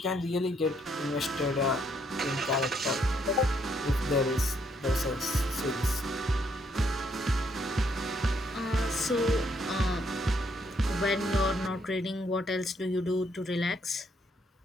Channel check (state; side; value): normal; both; correlation 0.72